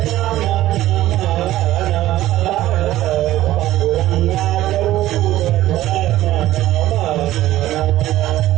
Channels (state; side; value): quieter; left; 14.9 dB